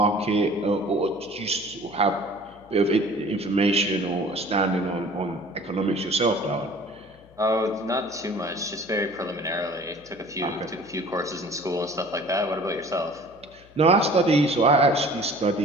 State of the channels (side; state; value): left; noise; hum, 26 dB below the sound